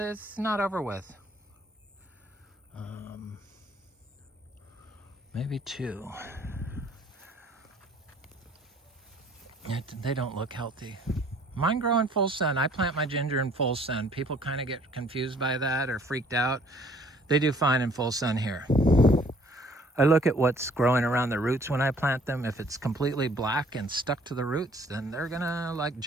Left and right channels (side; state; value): both; normal; correlation 0.58